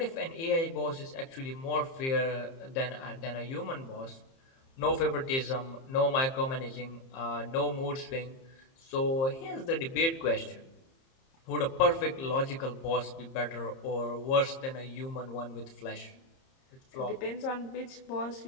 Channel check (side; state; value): right; late; 30 ms